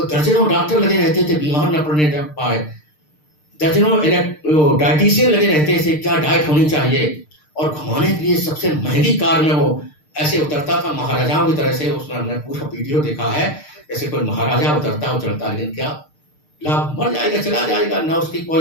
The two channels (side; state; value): right; late; 6.6 ms